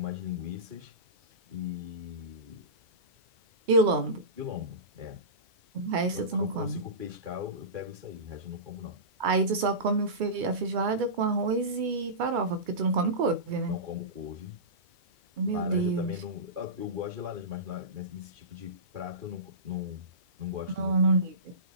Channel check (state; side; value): late; left; 2.3 ms